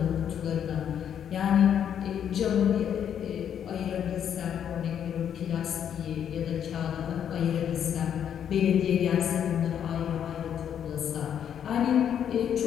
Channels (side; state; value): right; quieter; 9.0 dB